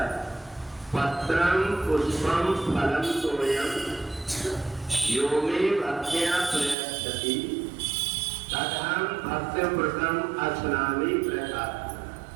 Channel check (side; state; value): left; drops out; at 6.8 s